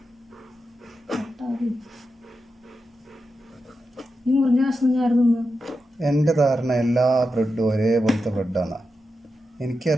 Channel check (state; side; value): normal; both; correlation 0.89